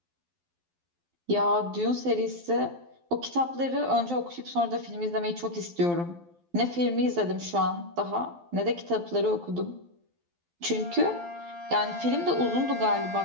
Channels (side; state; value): left; late; 12 ms